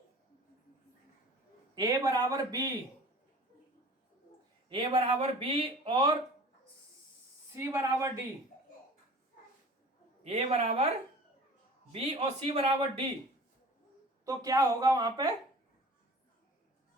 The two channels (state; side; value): normal; both; correlation 0.43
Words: ए बराबर बी और सी बराबर डी, ए बराबर बी और सी बराबर डी, तो क्या होगा वहां पे,